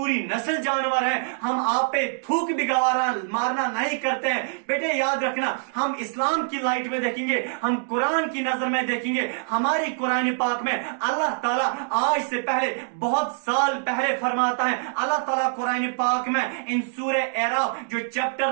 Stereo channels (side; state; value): left; silent; digital silence